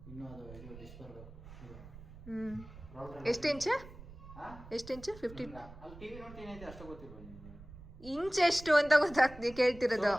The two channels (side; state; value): right; noise; rumble, 16 dB below the sound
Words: ಎಷ್ಟು ಇಂಚು? 50 ಇಂಚ್ ಎಷ್ಟು ಅಂತ ಗೊತ್ತಾಗ್ತಿ ಕೇಳ್ತಿರೋದು.